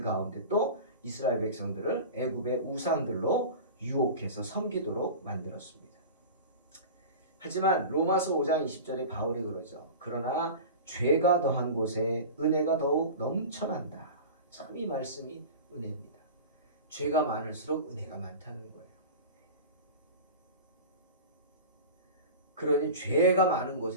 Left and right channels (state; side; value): inverted; both; correlation -0.32